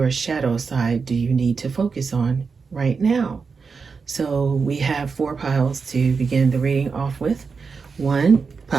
shadow side do you need to focus on right now? So we have 4 piles to begin the reading off with.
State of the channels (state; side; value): quieter; left; 5.1 dB